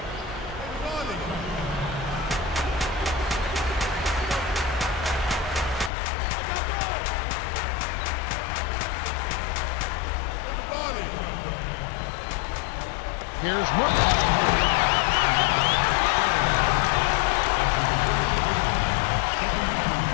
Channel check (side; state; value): right; drops out; at 5.9 s